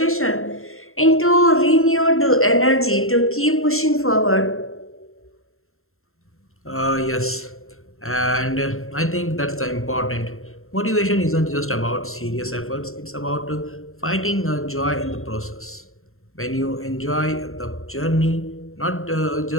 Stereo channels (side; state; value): right; late; 0.62 ms